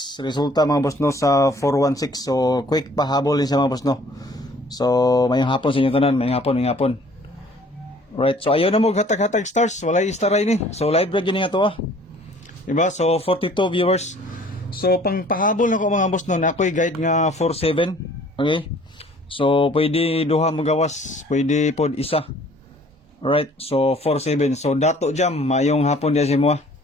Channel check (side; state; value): both; normal; correlation 0.54